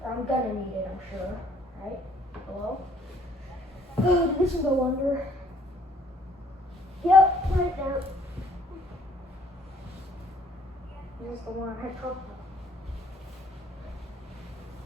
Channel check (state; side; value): normal; both; correlation 0.62